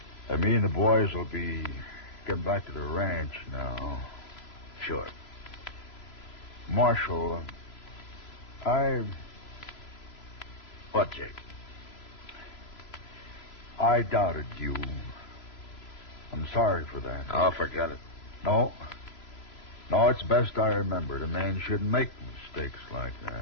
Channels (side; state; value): right; late; 3.0 ms